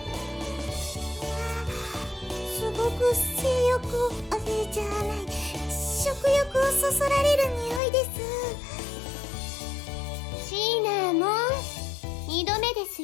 すごく性欲をじゃない、食欲をそそられる匂いです。シナモン、2度目です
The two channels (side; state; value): right; drops out; at 7.8 s